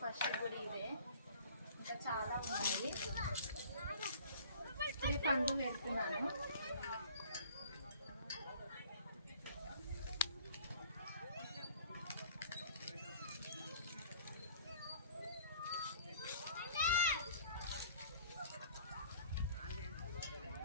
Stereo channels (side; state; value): both; inverted; correlation -0.50